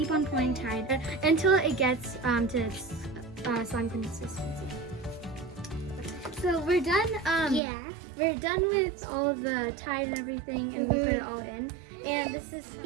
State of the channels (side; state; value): left; drops out; at 7.6 s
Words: on pouring Tide until it gets to its slime consistency. So we're done. We're done with all of the Tide and everything, and we put it all in. And this is